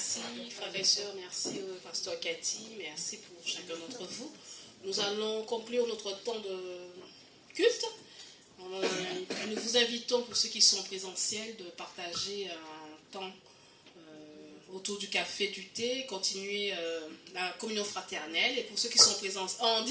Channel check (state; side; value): identical; both; correlation 1.00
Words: frères et sœurs, merci au pasteur Cathy, merci pour chacun d'entre vous. Nous allons conclure notre temps de culte. Nous vous invitons, pour ceux qui sont présentiels, de partager un temps autour du café, du thé, continuer la communion fraternelle. Et pour ceux qui sont présents en